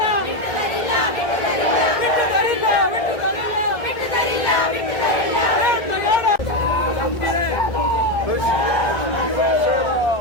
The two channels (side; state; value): right; late; 1.7 ms